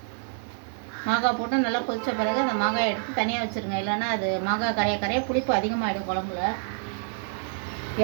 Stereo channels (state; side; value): silent; left; digital silence